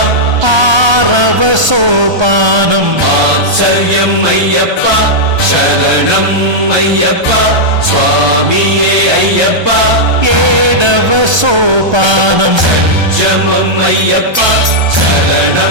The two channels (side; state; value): left; late; 1.3 ms